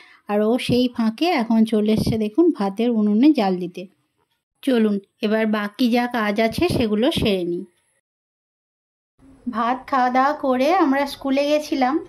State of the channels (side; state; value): both; identical; correlation 1.00